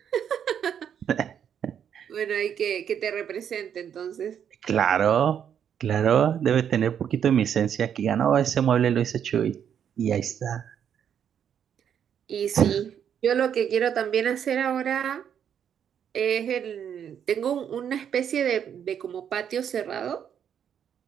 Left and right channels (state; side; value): quieter; left; 8.6 dB